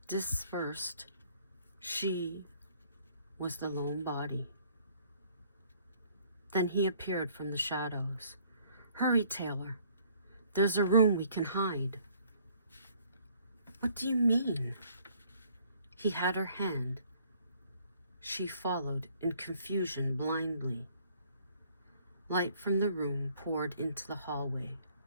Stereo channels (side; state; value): both; inverted; correlation -0.60